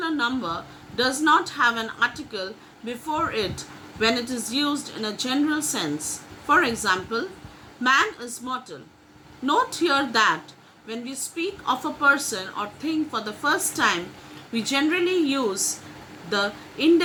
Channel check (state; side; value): identical; both; correlation 1.00